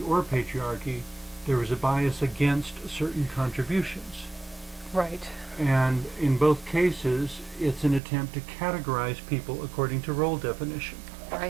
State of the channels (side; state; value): left; drops out; at 8.0 s